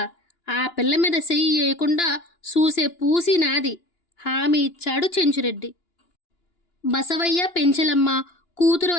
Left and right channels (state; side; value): late; right; 2.9 ms